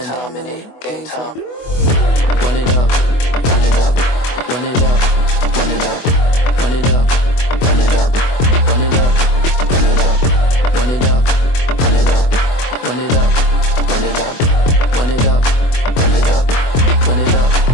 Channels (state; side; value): late; right; 24 ms